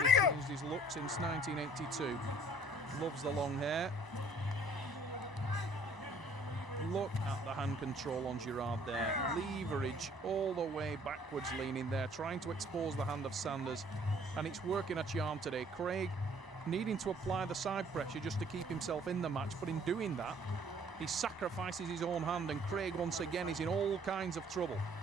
changed his look since 1982. Loves the long hair. Look at the hand control on Girard there. Leverage all the way backwards leaning there, trying to expose the hand of Sanders. And it's working a charm today. Craig needing to apply the side pressure just to keep himself in the match, but in doing that, he sacrifices his own hand, and Craig once again is in all kinds of trouble.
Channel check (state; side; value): normal; both; correlation 0.58